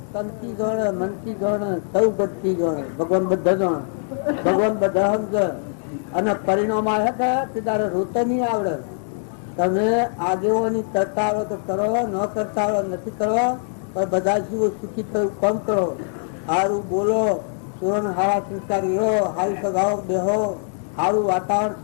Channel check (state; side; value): silent; right; digital silence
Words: તનથી જાણે, મનથી જાણે, સૌ ગતથી જાણે. ભગવાન બધા જાણે, ભગવાન બધા સમજે. અને પરિણામ આવે કે તારે રોતે નહીં આવડે. તમે આગેવાની કરતા આવડે તો કરો, ન કરતા આવડે નથી કરવા, પણ બધા જીવો સુખી થયું કામ કરો. સારું બોલો, સુરન હારા સંસ્કારી રહો, હારી સગાઓ બેહો, સારું વાતાવરણ